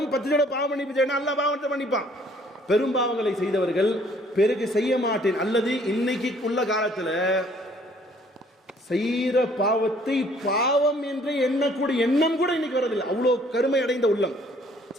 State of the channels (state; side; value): normal; both; correlation 0.60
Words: 10 தடவை பாவ மன்னிப்பு தேடினா அல்லாஹ் பாவத்தை மன்னிப்பான். பெரும் பாவங்களை செய்தவர்கள் பிறகு செய்ய மாட்டேன், அல்லது இன்னைக்கு உள்ள காலத்துல செய்யற பாவத்தை பாவம் என்று எண்ணக்கூடிய எண்ணம் கூட இன்னைக்கு வரதில்லை. அவ்வளோ கருமை அடைந்த உள்ளம்.